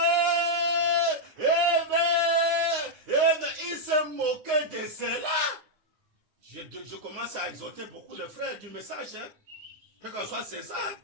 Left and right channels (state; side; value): late; left; 9.5 ms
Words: Il s'est moqué de cela. Je commence à exhorter beaucoup de frères du message. Hein? Quel que soit César.